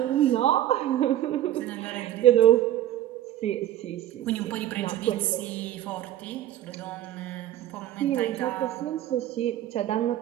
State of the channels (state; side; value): quieter; left; 12.8 dB